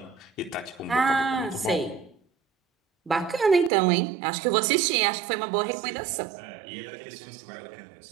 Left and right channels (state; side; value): drops out; left; at 3.7 s